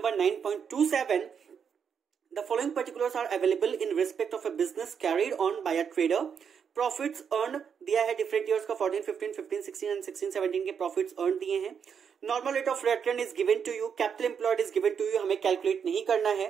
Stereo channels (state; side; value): quieter; left; 7.1 dB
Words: 9.27. The following particulars are available in respect of a business carried on by a trader. Profits earned दिया है different years का 14, 15, 15, 16 and 16, 17 के profits earned दिए हैं। Normal rate of return is given to you. Capital employed is given to you. हमें calculate नहीं करना है,